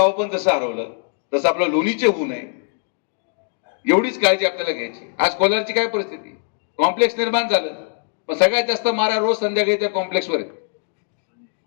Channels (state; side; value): silent; right; 60 dB below the other